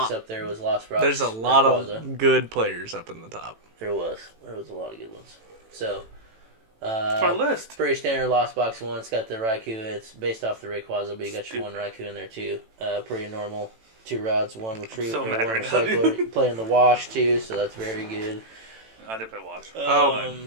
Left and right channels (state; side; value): late; left; 18 ms